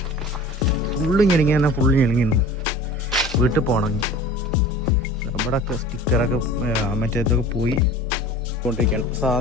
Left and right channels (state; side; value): normal; both; correlation 0.41